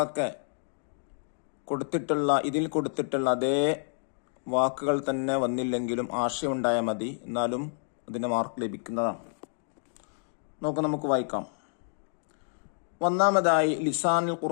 ഇതിൽ കൊടുത്തിട്ടുള്ള അതേ വാക്കുകൾ തന്നെ വന്നില്ലെങ്കിലും ആശയമുണ്ടായാൽ മതി, എന്നാലും അതിന് മാർക്ക് ലഭിക്കുന്നതാണ്. നമുക്ക് വായിക്കാം. ഒന്നാമതായി ലിസാനുൽ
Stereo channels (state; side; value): silent; right; digital silence